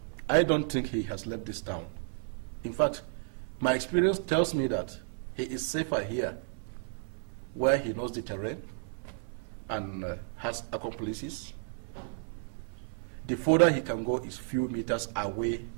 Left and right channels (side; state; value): left; silent; 56 dB below the other